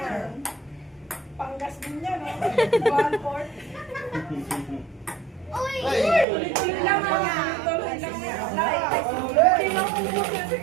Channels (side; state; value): left; drops out; at 6.2 s